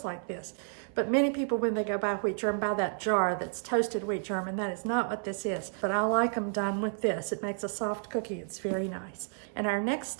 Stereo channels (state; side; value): silent; left; 57 dB below the other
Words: like this. But many people, when they go buy wheat germ, buy that jar that's toasted wheat germ, and that is not what this is. But I like them done with this. It makes a soft cookie. It's very nice. And our next